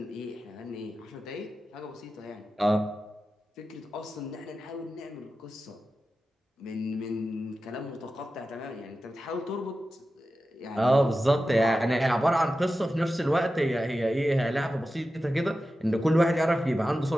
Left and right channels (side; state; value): both; normal; correlation 0.93